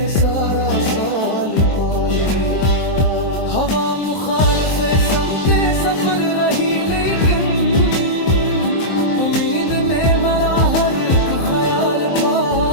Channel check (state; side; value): late; right; 23 ms